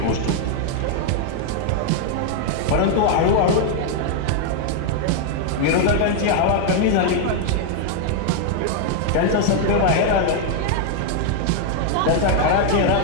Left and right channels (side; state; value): both; different; correlation 0.00